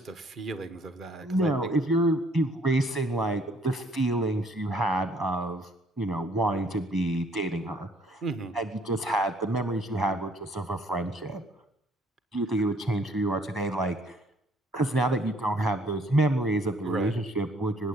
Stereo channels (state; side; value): normal; both; correlation 0.62